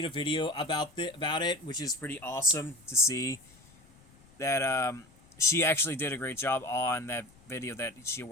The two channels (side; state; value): left; noise; rumble, 27 dB below the sound